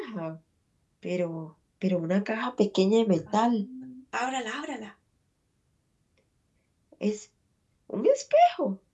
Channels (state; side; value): identical; both; correlation 1.00